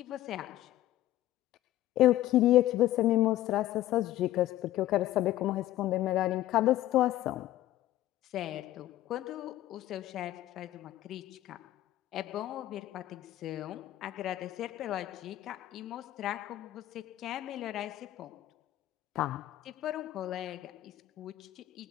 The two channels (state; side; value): quieter; right; 14.5 dB